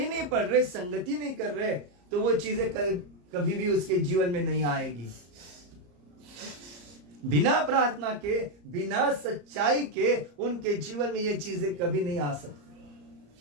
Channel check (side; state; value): left; late; 34 ms